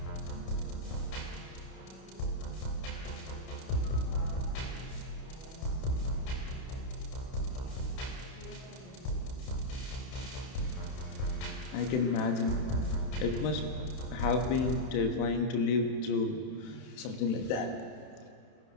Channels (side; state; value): right; late; 31 ms